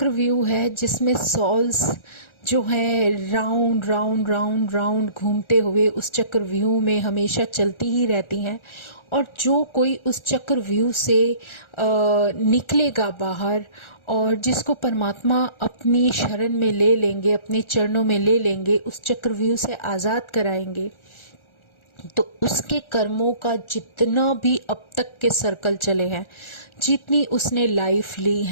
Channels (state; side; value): late; right; 1.4 ms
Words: है जिसमें सॉल्स जो है राउंड राउंड राउंड राउंड घूमते हुए उस चक्रव्यूह में हमेशा चलती ही रहती हैं। और जो कोई उस चक्रव्यूह से निकलेगा बाहर, और जिसको परमात्मा अपनी शरण में ले लेंगे, अपने चरणों में ले लेंगे, उस चक्रव्यूह से आज़ाद कराएंगे, तो उसके कर्मों का जितना भी अब तक के सर्कल चले हैं, जितनी उसने लाइफ ली